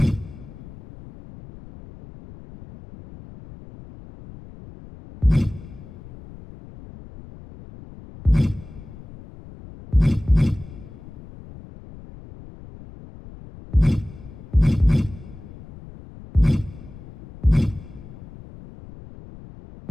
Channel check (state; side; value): noise; left; rumble, 17 dB below the sound